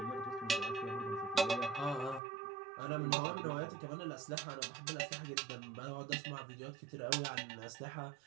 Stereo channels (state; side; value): drops out; left; at 2.2 s